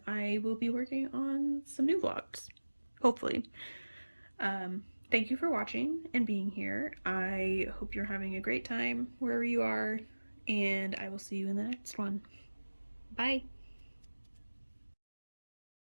I will be working on some new vlogs, hopefully. Thank you for watching and being here. I hope you're having a great time wherever you are, and I will see you in the next one. Bye!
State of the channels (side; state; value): both; inverted; correlation -1.00